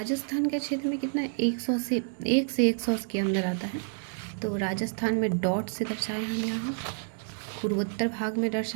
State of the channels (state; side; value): silent; left; digital silence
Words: के क्षेत्र में कितना है, 100 से 1 से 100 के अंदर आता है। तो राजस्थान में डॉट से दर्शाए हम यहाँ, पूर्वोत्तर भाग में